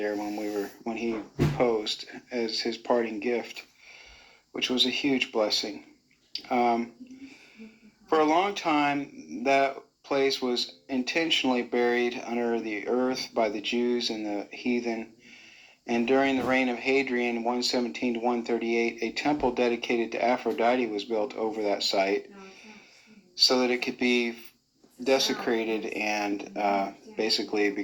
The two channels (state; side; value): identical; both; correlation 1.00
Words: when he reposed as his parting gift, which was a huge blessing. For a long time, that place was intentionally buried under the earth by the Jews and the heathen. And during the reign of Hadrian, 117 to 138, a temple dedicated to Aphrodite was built over that site so that it could be desecrated and basically